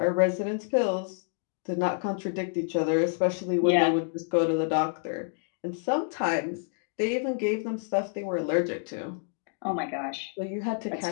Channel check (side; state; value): right; silent; digital silence